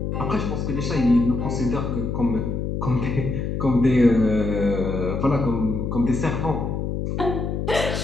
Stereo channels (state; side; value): noise; left; hum, 2 dB below the sound